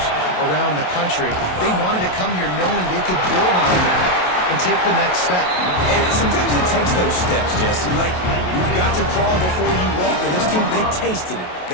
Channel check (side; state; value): right; late; 27 ms